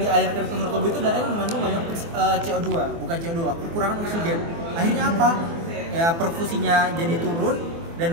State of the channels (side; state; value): left; late; 24 ms